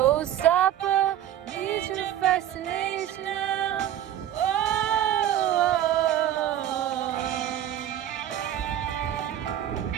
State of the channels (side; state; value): left; quieter; 11.4 dB